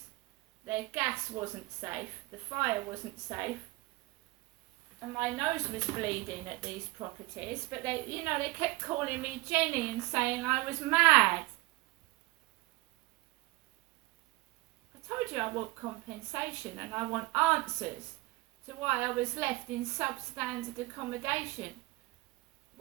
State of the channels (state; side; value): quieter; left; 21.1 dB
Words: Their gas wasn't safe, the fire wasn't safe, and my nose was bleeding at these properties. But they kept calling me Jenny and saying I was mad. I told you I want compensation and I want answers to why I was left in substandard accommodation,